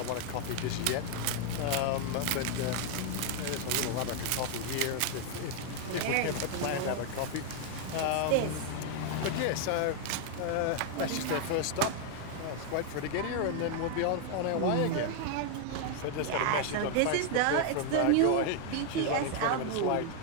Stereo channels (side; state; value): both; different; correlation 0.00